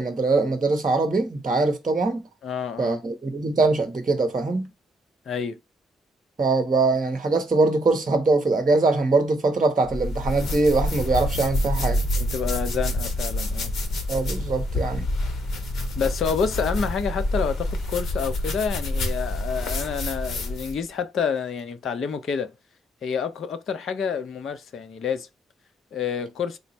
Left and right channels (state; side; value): normal; both; correlation 0.70